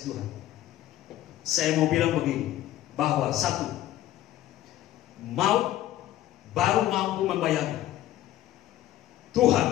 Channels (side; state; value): right; quieter; 13.7 dB